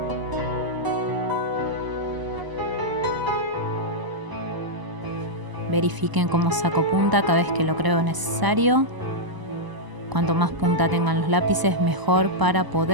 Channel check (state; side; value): late; left; 1.0 ms